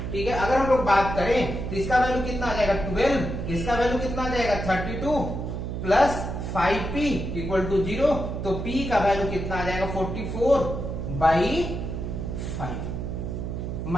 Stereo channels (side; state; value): right; noise; hum, 5 dB below the sound